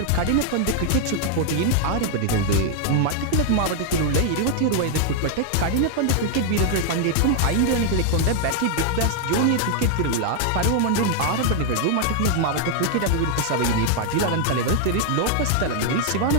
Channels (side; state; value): both; different; correlation 0.00